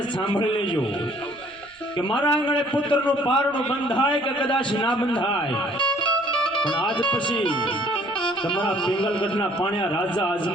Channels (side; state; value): right; noise; rumble, 29 dB below the sound